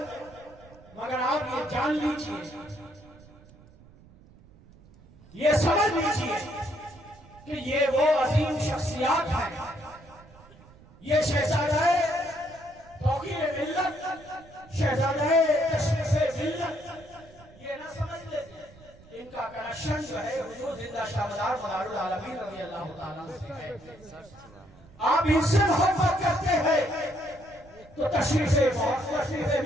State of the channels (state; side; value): noise; right; rumble, 24 dB below the sound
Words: مگر آپ یہ جان لیجئے، یہ سمجھ لیجئے کہ یہ وہ عظیم شخصیات ہیں، یہ شہزادہ توقیر ملت، شہزادہ تشریف ملت، یہ نہ سمجھ لیتے ان کا کنیکشن جو ہے حضور زندہ شاہدار مدار العالمین رضی اللہ تعالیٰ سے ہے۔ آپ ان سے محبت کرتے ہیں تو تشریف